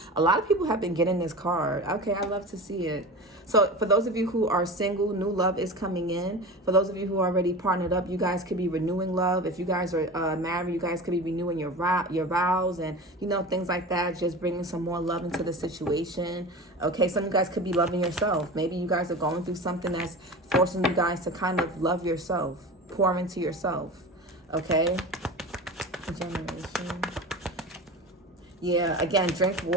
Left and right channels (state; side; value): normal; both; correlation 0.31